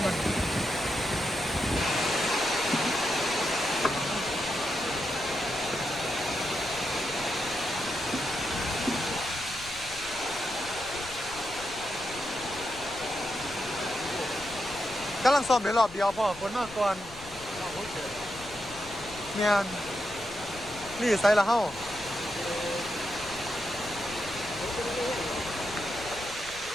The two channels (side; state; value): left; noise; rumble, 17 dB below the sound